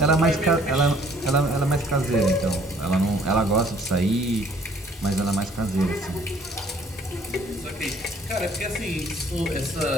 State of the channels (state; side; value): normal; both; correlation 0.58